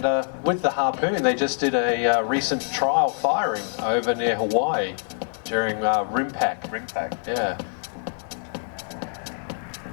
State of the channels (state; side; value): silent; right; 62 dB below the other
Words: with the Harpoon, they just did a recent trial firing over near Hawaii during RIMPAC. RIMPAC. Yeah.